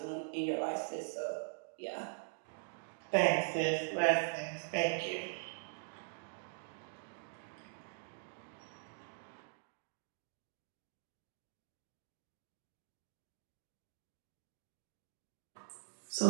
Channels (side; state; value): left; silent; digital silence